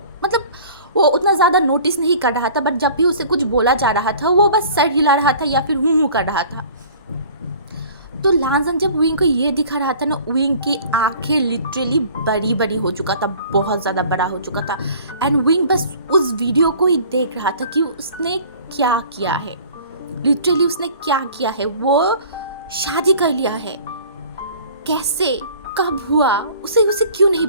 मतलब वो उतना ज़्यादा नोटिस नहीं कर रहा था, बट जब भी उसे कुछ बोला जा रहा था वो बस सर हिला रहा था या फिर हूँ कर रहा था। तो लानजंग जब विंग को ये दिखा रहा था ना, विंग की आंखें लिटरली बड़ी बड़ी हो चुका था, बहुत ज़्यादा बड़ा हो चुका था। एंड विंग बस उस वीडियो को ही देख रहा था कि उसने क्या किया है, लिटरली उसने क्या किया है। वो शादी कर लिया है, कैसे, कब हुआ, उसे क्यों नहीं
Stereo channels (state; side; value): inverted; both; correlation -0.48